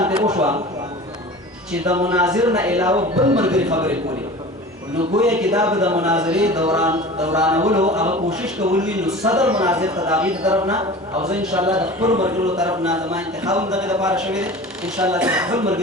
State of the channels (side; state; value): both; normal; correlation 0.37